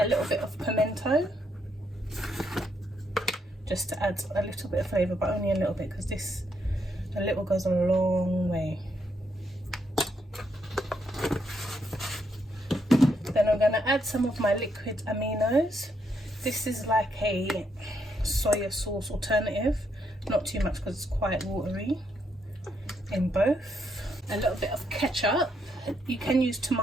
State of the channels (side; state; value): both; normal; correlation 0.76